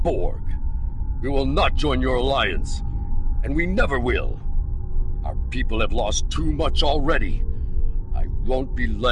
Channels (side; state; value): both; identical; correlation 1.00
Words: We will not join your alliance, and we never will. Our people have lost too much already. I won't be